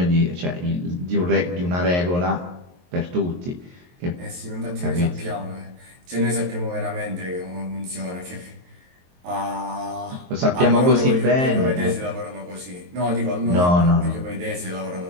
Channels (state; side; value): late; left; 23 ms